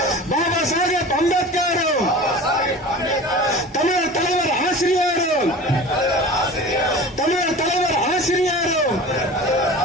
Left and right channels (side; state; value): both; normal; correlation 0.37